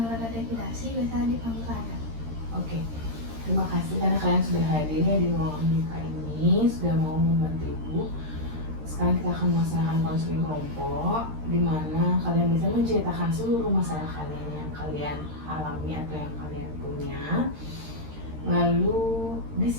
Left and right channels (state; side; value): late; left; 13 ms